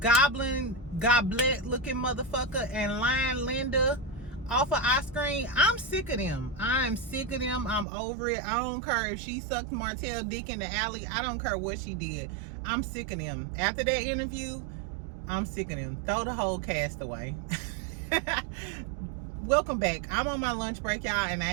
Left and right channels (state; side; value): drops out; left; at 7.9 s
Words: goblin, goblet looking motherfucker and Lion Linda off of our screen, I'm sick of them. I'm sick of them. I'm over it. I don't care if she sucked Martell dick in the alley. I don't care what she did. I'm sick of them. After that interview, I'm sick of them. Throw the whole cast away. Welcome back. I'm on my lunch break, y'all, and